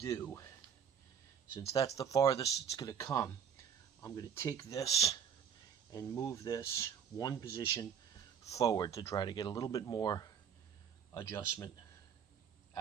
since that's the farthest it's going to come, I'm going to take this and move this one position forward to try to get a little bit more adjustment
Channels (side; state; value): left; quieter; 7.7 dB